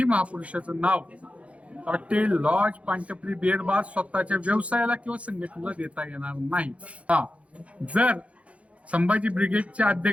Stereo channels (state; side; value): late; left; 0.063 ms